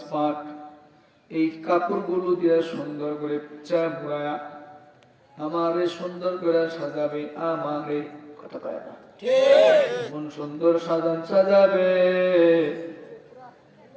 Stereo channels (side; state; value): both; identical; correlation 1.00